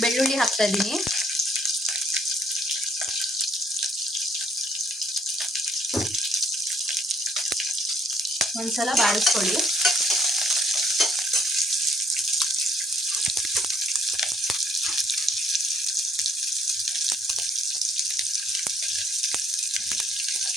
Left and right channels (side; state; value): both; normal; correlation 0.65